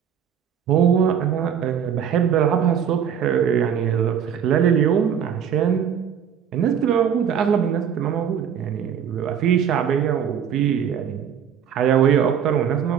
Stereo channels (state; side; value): quieter; left; 8.2 dB